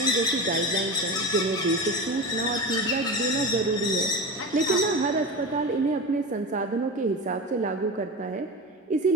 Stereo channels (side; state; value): both; normal; correlation 0.25